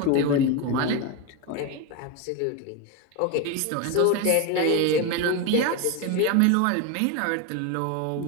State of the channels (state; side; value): different; both; correlation 0.03